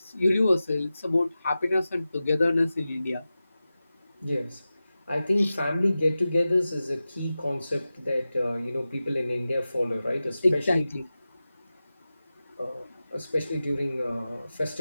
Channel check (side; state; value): both; inverted; correlation -0.95